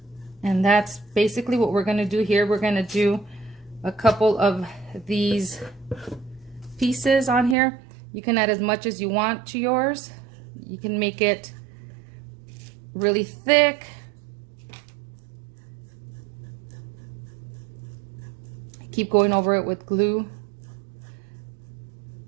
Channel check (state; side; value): drops out; left; at 7.6 s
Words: And that's basically what we're gonna do here. We're gonna do a couple of these pieces on here. You can add as much as you want to yours. You can make it really thick. Keep going over it with glue.